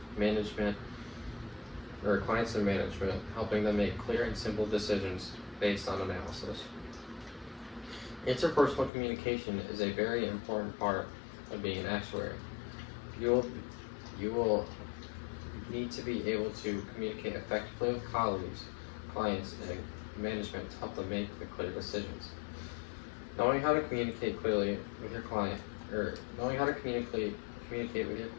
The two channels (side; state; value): right; drops out; at 8.9 s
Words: and management, helping them make clear and simple decisions based on analysis. Interpersonal communication is a very important part of being an actuary. You will need to be able to communicate effectively with colleagues, clients, and management to help them make the clear decisions. Knowing how to communicate clearly with your client,